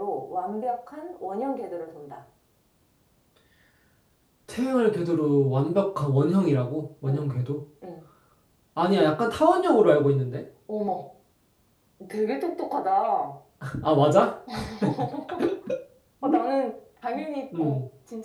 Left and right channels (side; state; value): both; identical; correlation 1.00